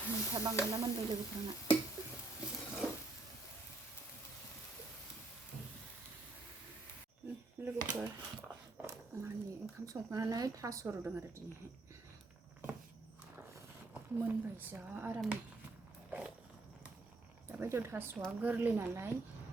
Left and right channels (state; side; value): quieter; left; 3.2 dB